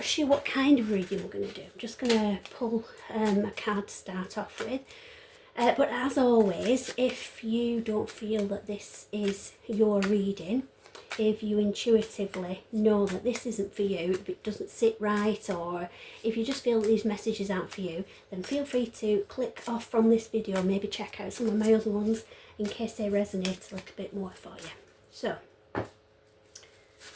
sure what kind of reading we're going to do. I'm just going to pull a card to start off with. But as always, if you don't feel that this is your reading, if you intuitively know that this isn't for you, if it doesn't sit right, or if you just feel that these messages aren't for you, then feel free to click off from this video, maybe check out some of my other ones in case they resonate a little bit more for you. So, I'm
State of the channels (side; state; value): both; identical; correlation 1.00